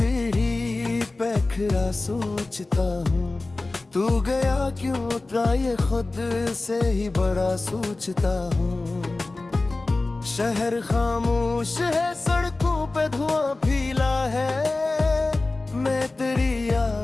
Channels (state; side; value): quieter; right; 3.2 dB